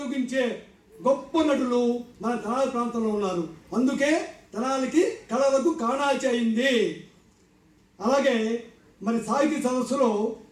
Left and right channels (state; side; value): identical; both; correlation 1.00